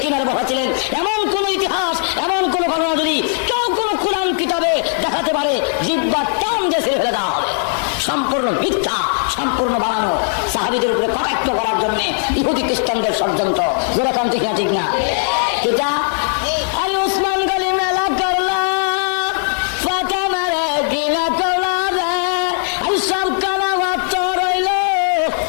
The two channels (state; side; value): silent; right; digital silence